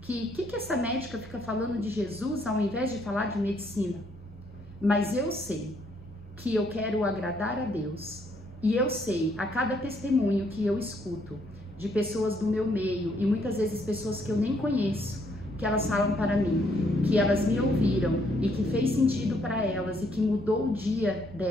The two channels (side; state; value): both; normal; correlation 0.70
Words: que essa médica fica falando de Jesus ao invés de falar de medicina. Mas eu sei que eu quero agradar a Deus, e eu sei a cada testemunho que eu escuto de pessoas do meu meio, e muitas vezes pessoas que eu nem conheço, que elas falam para mim, que elas me ouviram e que fez sentido para elas e que mudou o dia